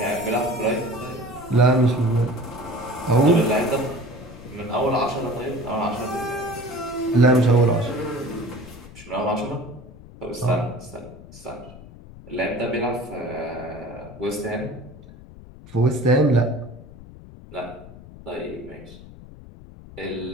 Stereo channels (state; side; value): noise; left; rumble, 18 dB below the sound